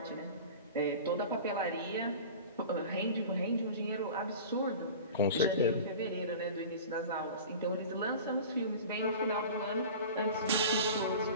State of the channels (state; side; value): inverted; both; correlation -0.36